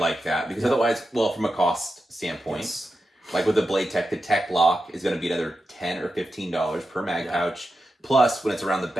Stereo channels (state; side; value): normal; both; correlation 0.90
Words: that because otherwise, well, from a cost standpoint, like with the Blade Tech, the Tech Lock is going to be another $10 or $15 per mag pouch. Plus, when it's around the